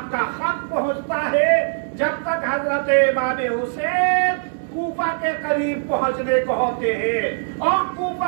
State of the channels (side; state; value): left; silent; digital silence